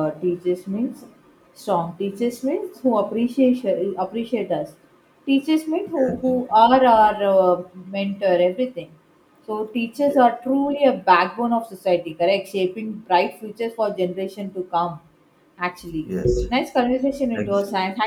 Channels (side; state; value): both; identical; correlation 1.00